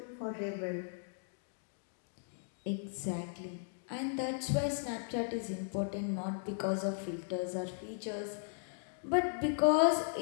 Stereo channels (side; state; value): right; silent; digital silence